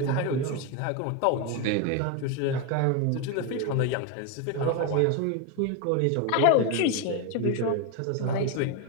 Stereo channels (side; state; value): both; different; correlation 0.02